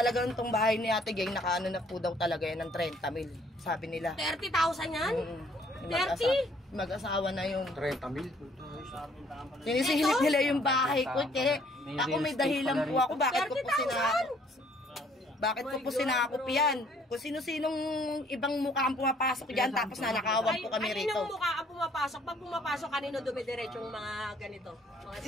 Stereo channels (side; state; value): both; normal; correlation 0.62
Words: itong bahay ni Ate Geng, nakaano na po daw talaga yan ng 30 mil, sabi nila. 30,000 yan? 30? Mag-asawa na yung 30,000. sinisingit nila yung bahay ko, Che. Ako may dahilan po ako, bakit ko po sinakop? Bakit ko po sinakop yan? Kung sino-sinong ibang mukha ang pumapasok dyan, tapos nanakawan po kami rito. Ay, mukha ang pumapasok? Pag pumapasok, kanino dumidiretso yung mga ganito? Mga